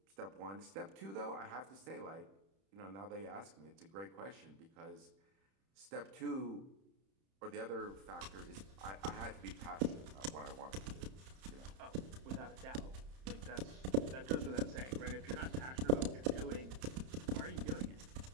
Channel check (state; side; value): late; left; 31 ms